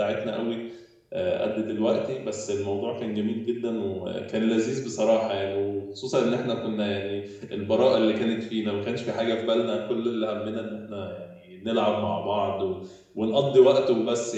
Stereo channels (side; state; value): both; identical; correlation 1.00